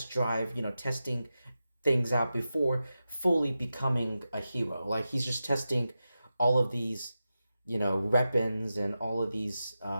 drive, testing things out before fully becoming a hero. Like he's just testing all of these, weapons and all of these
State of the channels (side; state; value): both; inverted; correlation -0.92